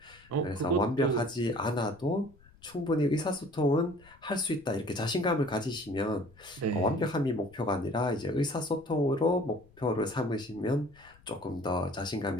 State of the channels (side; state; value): left; noise; rumble, 27 dB below the sound